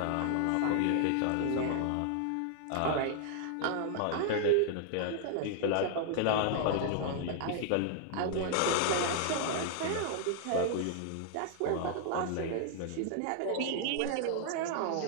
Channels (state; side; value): different; both; correlation 0.00